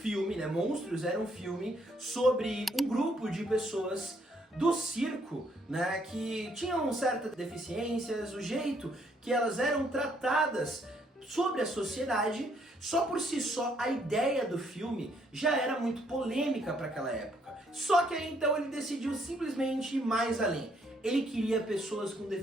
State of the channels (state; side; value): normal; both; correlation 0.69